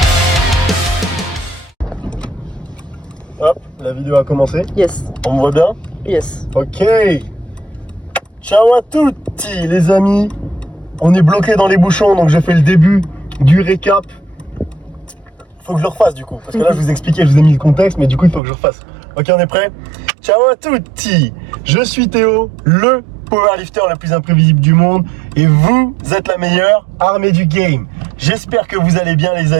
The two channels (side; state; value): left; drops out; at 18.4 s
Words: Hop, la vidéo a commencé. Yes. On me voit bien? Yes. Ok. Ciao à tutti les amis. On est bloqué dans les bouchons, donc je fais le début du récap. Faut que je le refasse du coup, parce que là je vous expliquais, je vous ai mis le contexte, mais du coup il faut que je refasse. Ok, on est prêt? Ciao à tutti. Je suis Théo, le powerlifter le plus imprévisible du monde, et vous êtes la meilleure armée du game. J'espère que vous allez bien les